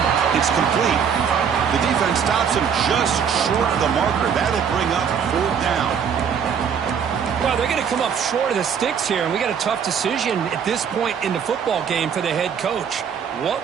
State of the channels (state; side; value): quieter; left; 7.4 dB